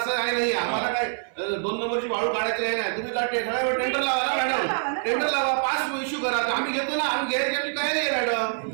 आहे नाही, आम्हाला काय 2 नंबरची वाळू काढायची आहे नाही. तुम्ही सगळ्यावर टेंडर लावा ना मॅडम, टेंडर लावा, पास इश्यू करा. आम्ही घेतो ना, आम्ही घ्यायची आमची तयारी आहे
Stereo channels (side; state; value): left; silent; 61 dB below the other